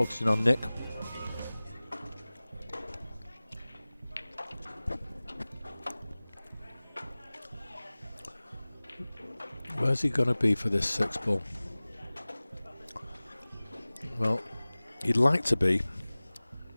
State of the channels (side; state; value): both; inverted; correlation -0.99